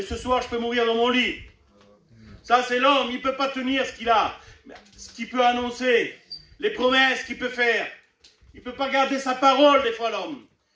ce soir, je peux mourir dans mon lit. Ça, c'est l'homme. Il ne peut pas tenir ce qu'il a. Ce qu'il peut annoncer. Les promesses qu'il peut faire. Il ne peut pas garder sa parole, des fois, l'homme.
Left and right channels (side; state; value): both; identical; correlation 1.00